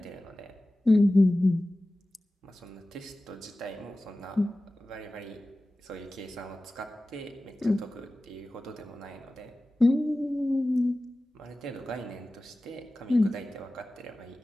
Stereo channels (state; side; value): normal; both; correlation 0.96